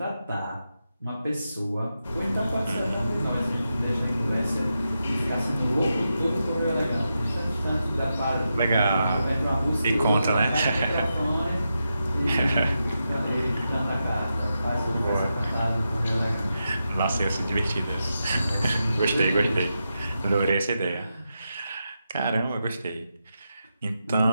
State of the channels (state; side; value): inverted; both; correlation -0.88